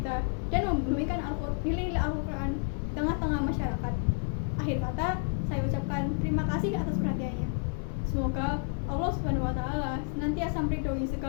dan membumikan nilai-nilai Al-Quran di tengah-tengah masyarakat. Akhir kata, saya ucapkan terima kasih atas perhatiannya. Semoga Allah SWT senantiasa meridhoi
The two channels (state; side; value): silent; right; 58 dB below the other